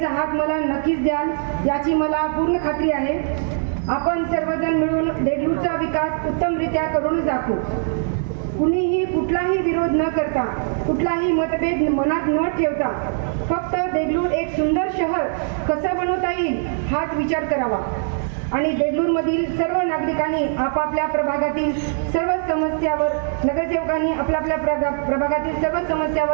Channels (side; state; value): left; silent; digital silence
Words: हात मला नक्कीच द्याल याची मला पूर्ण खात्री आहे. आपण सर्वजण मिळून देगलूरचा विकास उत्तमरित्या करून दाखवू. कुणीही कुठलाही विरोध न करता, कुठलाही मतभेद मनात न ठेवता फक्त देगलूर एक सुंदर शहर कसं बनवता येईल हाच विचार करावा आणि देगलूरमधील सर्व नागरिकांनी आपापल्या प्रभागातील सर्व समस्यावर, नगरसेवकांनी आपल्या प्रभागातील सर्व